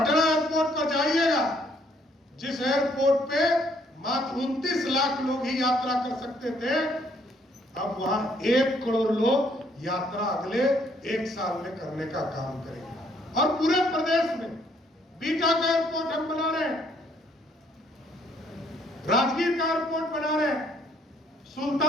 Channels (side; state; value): both; normal; correlation 0.67